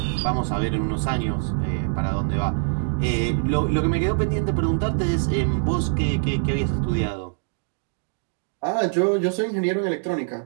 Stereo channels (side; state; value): left; silent; 63 dB below the other